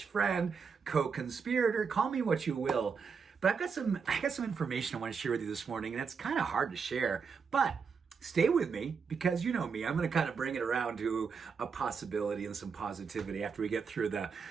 co-conspirator. Call me what you will. But I got some information I want to share with you this morning, and it's kind of hard to share. But stay with me, because you know me. I'm going to kind of bring it around to a possibility and some positivity after we get through the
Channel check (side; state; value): left; quieter; 5.8 dB